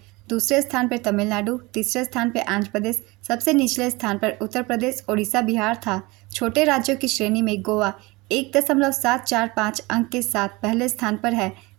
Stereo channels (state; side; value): quieter; left; 23.5 dB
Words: दूसरे स्थान पर तमिलनाडु, तीसरे स्थान पर आंध्र प्रदेश, सबसे निचले स्थान पर उत्तर प्रदेश, उड़ीसा, बिहार था। छोटे राज्यों की श्रेणी में गोवा 1.745 अंक के साथ पहले स्थान पर है,